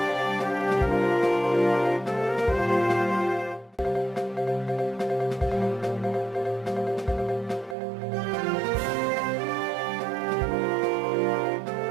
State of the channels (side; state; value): left; drops out; at 7.8 s